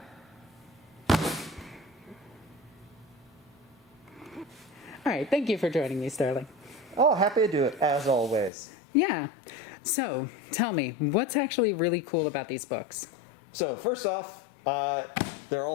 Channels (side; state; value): right; drops out; at 8.5 s